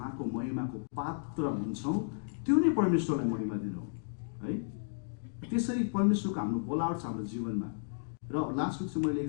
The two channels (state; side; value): silent; right; digital silence